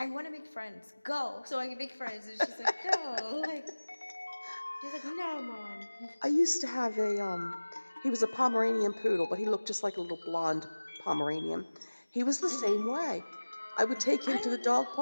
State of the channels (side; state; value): both; inverted; correlation -1.00